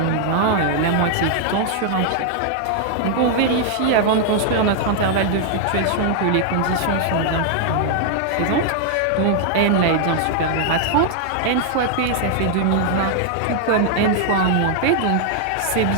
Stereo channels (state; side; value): different; both; correlation 0.00